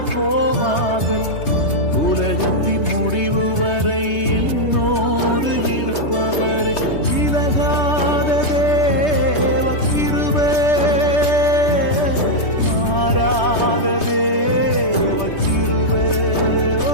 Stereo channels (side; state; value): right; late; 3.2 ms